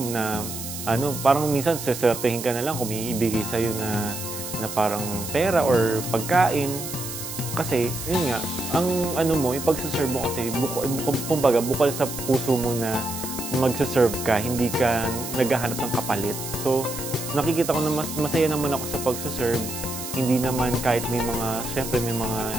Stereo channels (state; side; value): noise; right; hiss, 8 dB below the sound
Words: na, parang minsan, seswertehin ka na lang kung may ibigay sa'yo na parang pera or pagkain. Kasi, yun nga, ang yung pagsaserve mo kasi, kumbaga, bukal sa puso mo na magsaserve ka, hindi ka naghahanap ng kapalit. So, nakikita ko na masaya naman ako sa pagsaserve. Hindi naman kahit syempre may mga